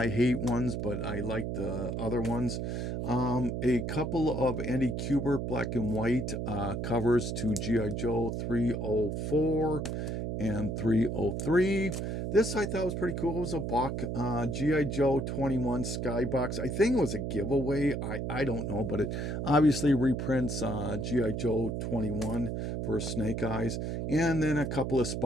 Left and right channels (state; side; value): noise; right; hum, 2 dB below the sound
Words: Hate ones, but I like the other ones. A couple of Andy Kubert black and white covers to G.I. Joe 304 and 303. This I thought was pretty cool. It was a buck. G.I. Joe 21 Skybox. I think it was a giveaway. I don't know, but it obviously reprints G.I. Joe 21 for Snake Eyes. And then a couple of